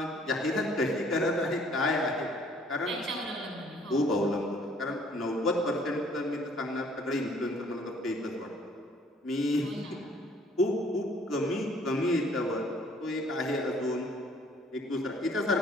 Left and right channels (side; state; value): both; normal; correlation 0.59